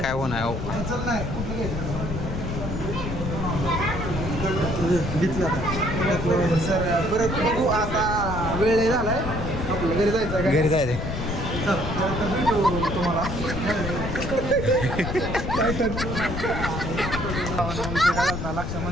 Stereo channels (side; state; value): left; noise; rumble, 4 dB below the sound